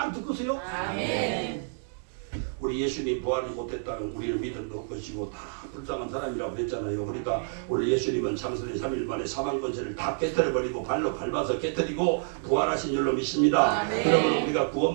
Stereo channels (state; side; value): silent; left; digital silence